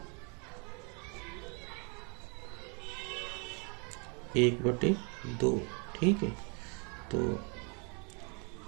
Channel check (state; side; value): quieter; left; 34.8 dB